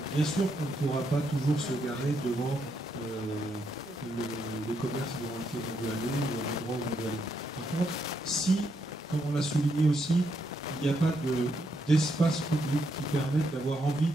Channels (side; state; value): both; normal; correlation 0.78